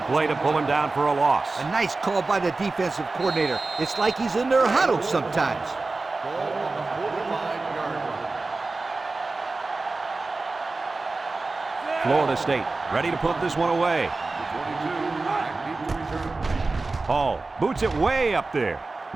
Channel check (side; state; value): left; quieter; 3.5 dB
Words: play to pull him down for a loss. A nice call by the defensive coordinator. It's like he's in their huddle sometimes. Ball on the 45-yard line. Florida State ready to put this one away. 22, back deep to return. Hall boots it way up there.